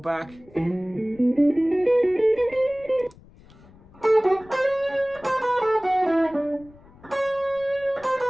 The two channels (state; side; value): noise; left; rumble, 25 dB below the sound